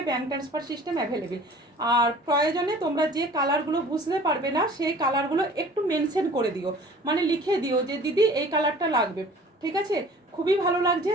bank transfer system available. আর প্রয়োজনে তোমরা যে কালারগুলো বুঝতে পারবে না সেই কালারগুলো একটু মেনশন করে দিও, মানে লিখে দিও যে দিদি এই কালারটা লাগবে। ঠিক আছে, খুবই ভালো লাগছে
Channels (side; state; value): both; normal; correlation 0.48